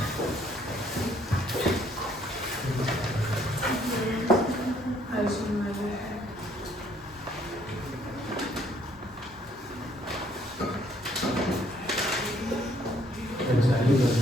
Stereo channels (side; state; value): both; normal; correlation 0.65